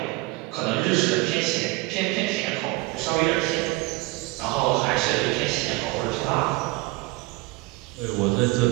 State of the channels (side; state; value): left; quieter; 22.1 dB